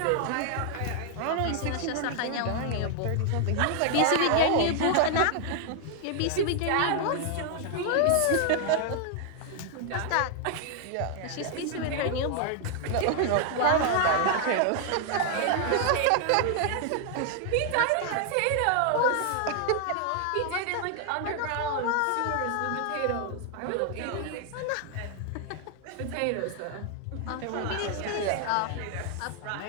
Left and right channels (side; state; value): both; different; correlation 0.00